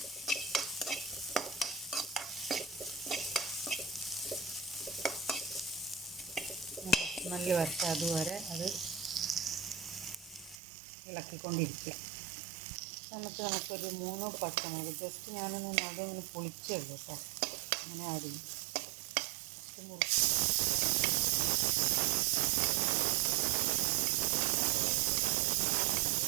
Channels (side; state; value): left; drops out; at 10.6 s